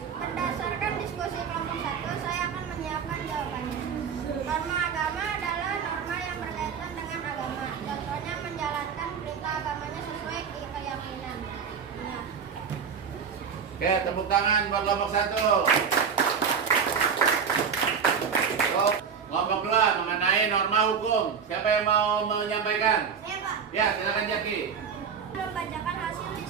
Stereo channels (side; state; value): left; quieter; 6.6 dB